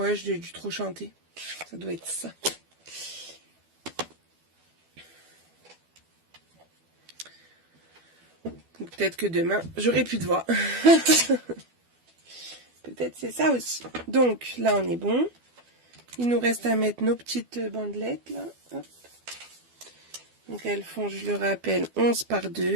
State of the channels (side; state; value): left; late; 12 ms